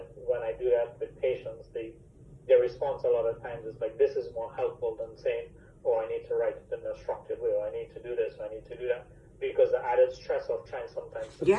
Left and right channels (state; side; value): identical; both; correlation 1.00